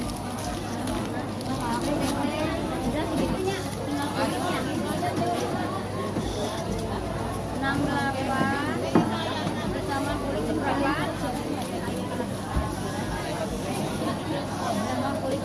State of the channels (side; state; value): both; identical; correlation 1.00